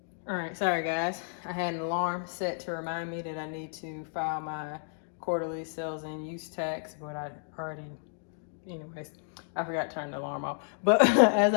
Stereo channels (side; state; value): right; silent; digital silence